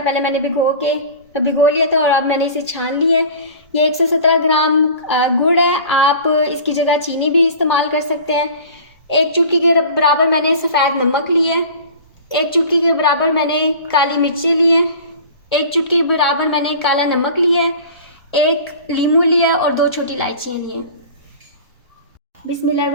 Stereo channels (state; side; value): inverted; both; correlation -0.40